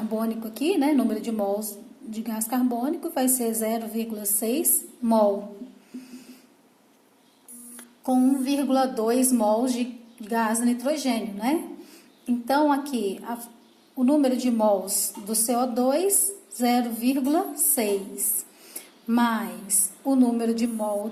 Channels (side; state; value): both; identical; correlation 1.00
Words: aqui, número de mols de gás carbônico vai ser 0,6 mol, com 1,2 mols de gás nitrogênio, Então, aqui, o número de mols do CO2, 0,6, mais o número de mol